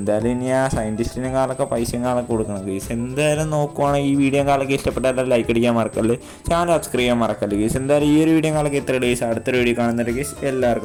ഇനി ആ സയൻറ്റിസ്റ്റിനും കാലൊക്കെ പൈസയും കാലൊക്കെ കൊടുക്കണം കേസ്. എന്തായാലും നോക്കുവാണെങ്കിൽ ഈ വീഡിയോ കാലൊക്കെ ഇഷ്ടപ്പെട്ടാലും ലൈക്ക് അടിക്കാൻ മറക്കല്ല്, ചാനൽ സബ്സ്ക്രൈബ് ചെയ്യാൻ മറക്കല്ല് കേസ്. എന്തായാലും ഈ ഒരു വീഡിയോ കാലൊക്കെ ഇത്ര കേസ്. അടുത്തൊരു വീഡിയോ കാണുന്നുണ്ട് കേസ്.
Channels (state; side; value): identical; both; correlation 1.00